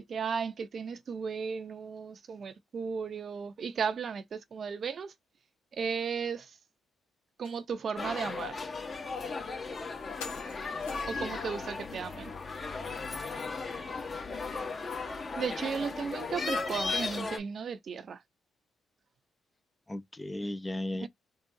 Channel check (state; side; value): normal; both; correlation 0.82